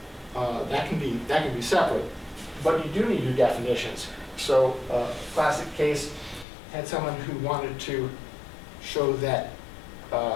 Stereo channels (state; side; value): drops out; right; at 6.5 s